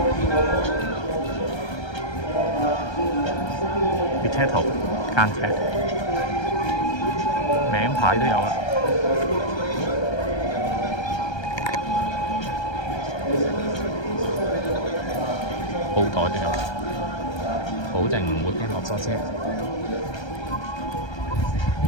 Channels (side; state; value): right; late; 1.3 ms